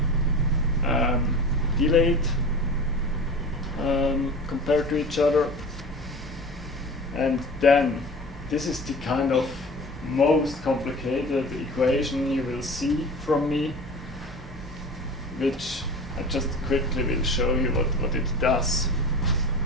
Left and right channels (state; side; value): normal; both; correlation 0.36